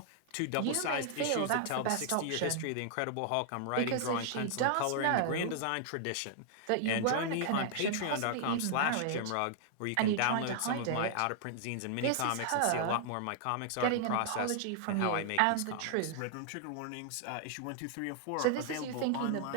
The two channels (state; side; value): different; both; correlation -0.01